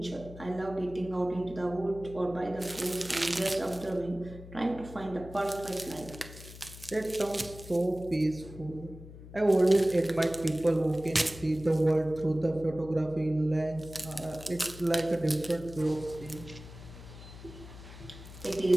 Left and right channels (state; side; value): noise; left; hum, 15 dB below the sound